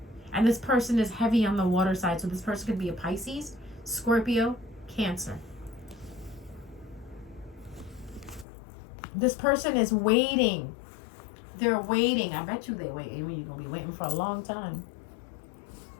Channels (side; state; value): right; drops out; at 8.5 s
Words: And this person is heavy on the water side, so this person could be a Pisces, Scorpio, Cancer. This person is waiting. They're waiting. I bet you they wait. You're going to be waiting for a long time.